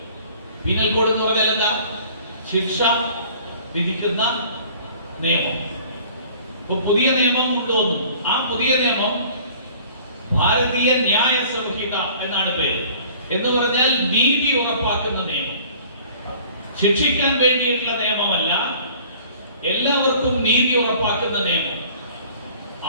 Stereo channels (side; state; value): both; inverted; correlation -0.50